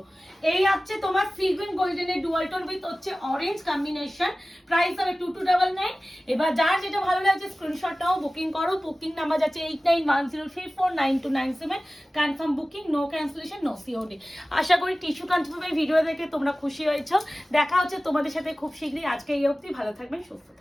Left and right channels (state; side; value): normal; both; correlation 0.97